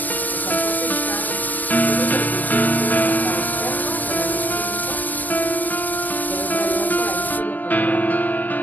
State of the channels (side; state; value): right; late; 0.083 ms